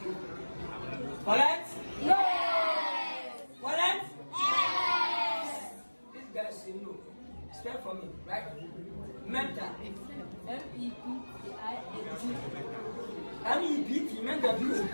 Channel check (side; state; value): both; inverted; correlation -1.00